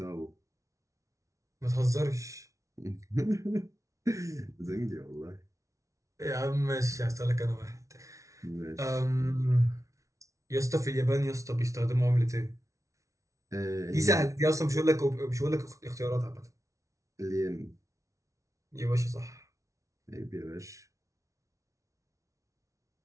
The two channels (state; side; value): late; left; 0.15 ms